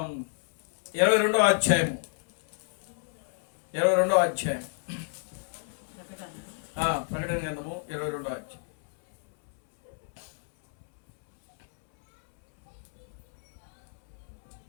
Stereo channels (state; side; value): silent; right; 58 dB below the other